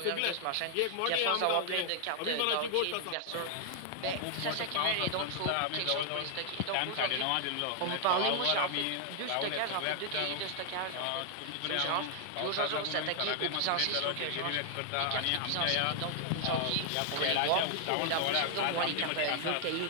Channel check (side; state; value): both; different; correlation 0.00